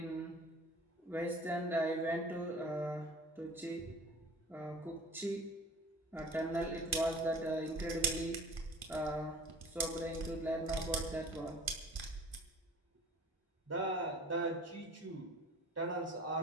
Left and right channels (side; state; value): both; normal; correlation 0.45